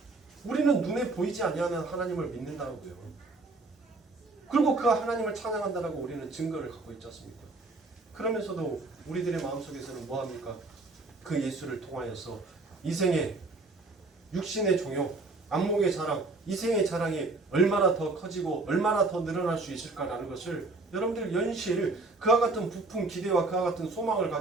우리는 눈에 보이지 아니하는 하나님을 믿는다고요. 그리고 그 하나님을 찬양한다라고 우리는 증거를 갖고 있지 않습니까? 그러면서도 우리들의 마음속에서는 뭐합니까? 그 예수를 통하여서 이생의 육신의 종욕, 안목의 자랑, 이생의 자랑이 얼마나 더 커지고 얼마나 더 늘어날 수 있을까라는 것을 여러분들 연실 그와 같은 부푼 기대와 그와 같은 소망을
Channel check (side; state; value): left; quieter; 3.4 dB